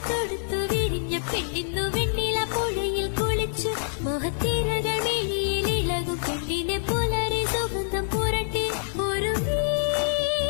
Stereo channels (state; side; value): silent; right; digital silence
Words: തൊടുത്തു വിരിഞ്ഞ പെണ്ണിന്നു വെണ്ണില പുഴയിൽ കുളിച്ചു മോഹത്തിരകൾ മിഴിയിൽ ഇളകും പെണ്ണിനെ പുലരി സുഗന്ധം പുരട്ടി ഒരു